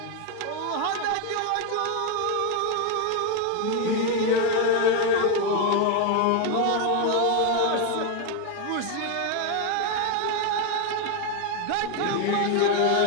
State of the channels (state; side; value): different; both; correlation 0.02